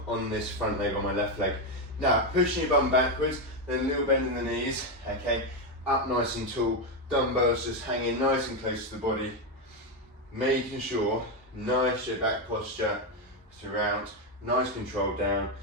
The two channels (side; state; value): both; normal; correlation 0.07